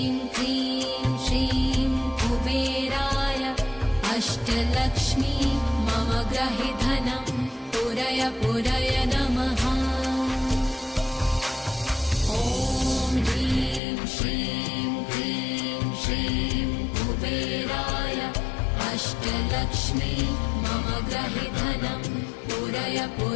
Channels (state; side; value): drops out; right; at 13.8 s